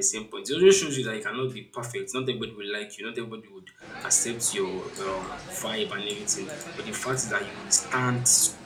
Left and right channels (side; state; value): both; identical; correlation 1.00